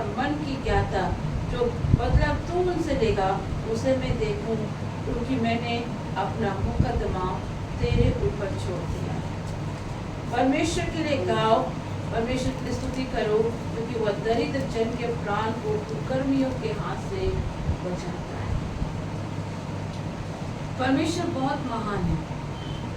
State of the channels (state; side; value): identical; both; correlation 1.00